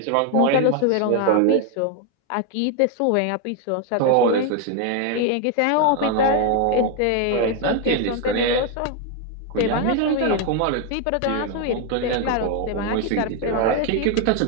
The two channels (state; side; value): different; both; correlation 0.01